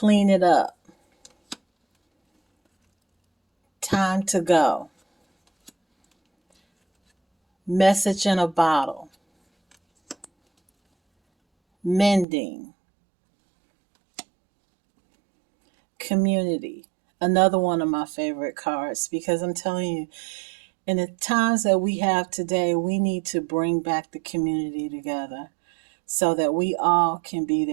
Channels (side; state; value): left; drops out; at 12.2 s